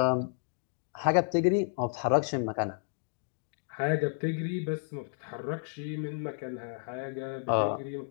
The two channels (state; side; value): silent; right; 57 dB below the other